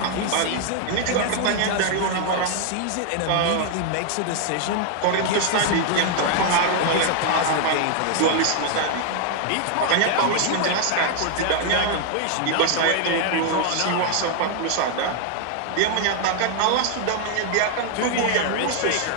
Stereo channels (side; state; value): both; different; correlation 0.00